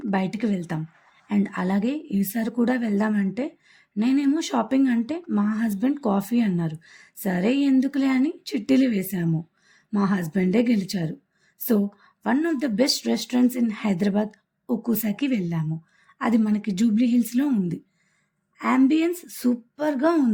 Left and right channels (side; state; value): both; identical; correlation 1.00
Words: బయటికి వెళ్తాం. అండ్ అలాగే ఈసారి కూడా వెళ్దామంటే నేనేమో షాపింగ్ అంటే మా హస్బెండ్ కాఫీ అన్నారు. సరే ఎందుకులే అని చిట్టీలు వేశాము. మా హస్బెండే గెలిచారు. So one of the best restaurants in Hyderabad ఒక్కుసాకి వెళ్ళాము. అది మనకి జూబ్లీ హిల్స్లో ఉంది. యాంబియన్స్ సూపర్గా